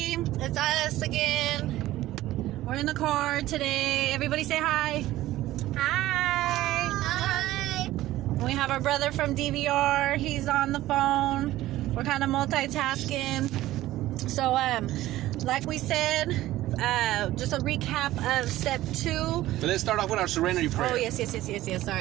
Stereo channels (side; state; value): left; quieter; 15.6 dB